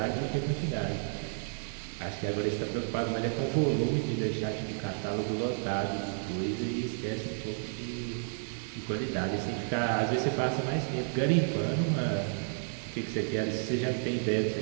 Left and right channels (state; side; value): silent; left; digital silence